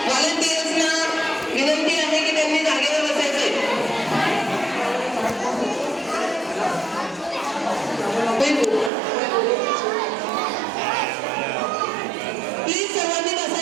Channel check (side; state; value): left; drops out; at 8.9 s